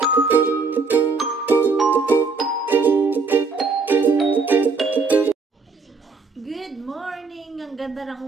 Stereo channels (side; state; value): left; quieter; 4.4 dB